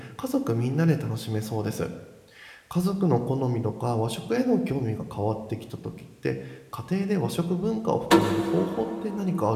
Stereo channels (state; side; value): identical; both; correlation 1.00